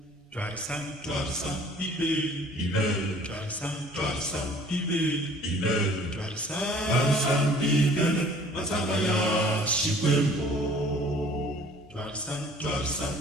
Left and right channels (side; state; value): both; normal; correlation 0.52